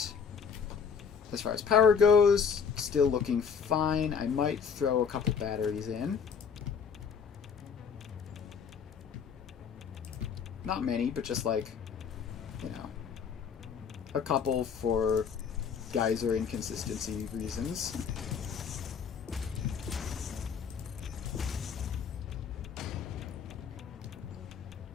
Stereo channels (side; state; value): right; quieter; 6.6 dB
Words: As far as power goes, still looking fine. I might throw a couple batteries in. Not many, but just like, you know, a couple for geyser inconsistency reasons.